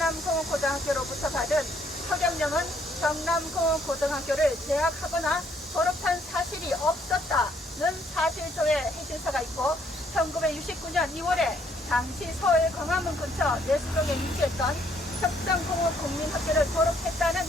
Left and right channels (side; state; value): both; normal; correlation 0.68